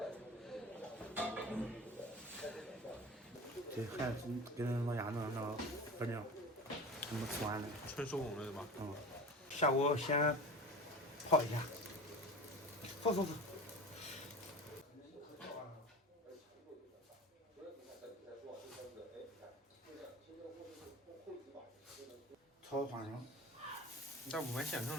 这还是跟老家那不一样，怎么吃完的？纯手工的对吧？下锅先泡一下。走。炒花生。你咋不买现成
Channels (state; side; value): normal; both; correlation 0.32